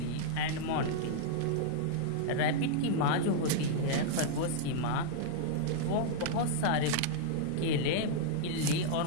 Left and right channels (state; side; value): different; both; correlation -0.01